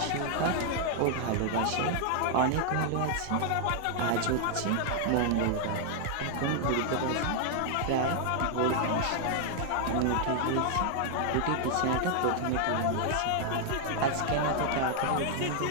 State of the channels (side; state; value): both; different; correlation 0.00